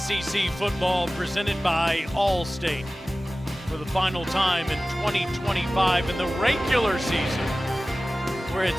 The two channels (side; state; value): both; normal; correlation 0.96